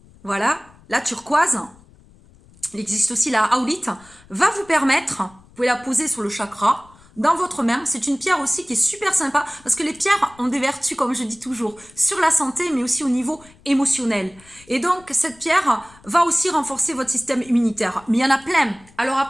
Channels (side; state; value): left; noise; rumble, 26 dB below the sound